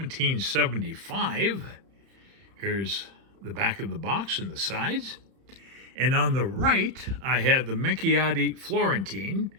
Here's the back of the box and the sides. And on the right, I have the Minchiate Florentine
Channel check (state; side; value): late; left; 31 ms